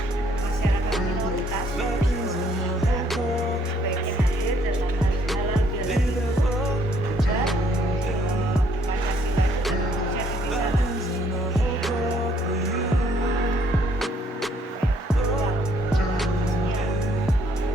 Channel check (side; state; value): both; normal; correlation 0.66